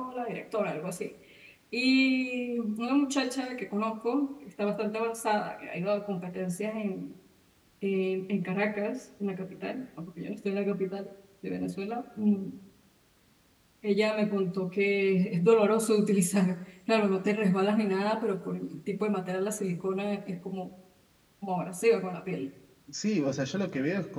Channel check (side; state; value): both; identical; correlation 1.00